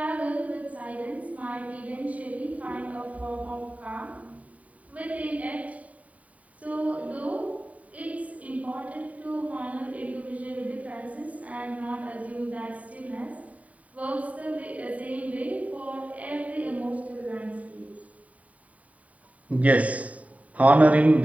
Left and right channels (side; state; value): left; late; 0.069 ms